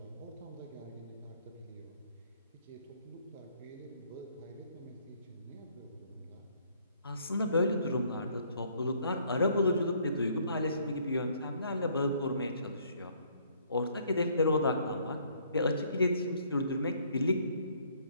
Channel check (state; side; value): inverted; both; correlation -0.64